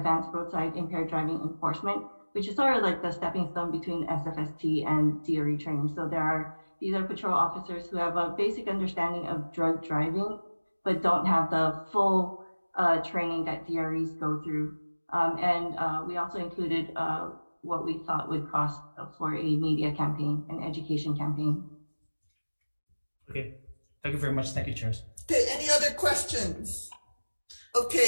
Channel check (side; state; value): both; inverted; correlation -1.00